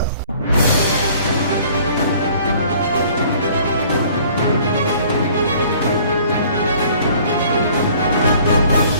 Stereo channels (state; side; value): inverted; both; correlation -0.54